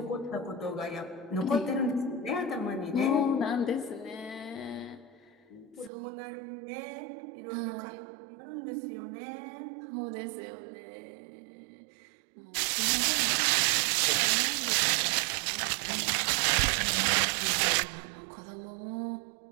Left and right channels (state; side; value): drops out; left; at 5.9 s